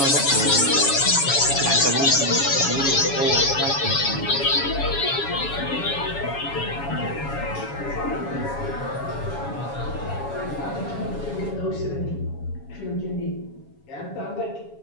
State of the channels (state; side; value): late; right; 7.2 ms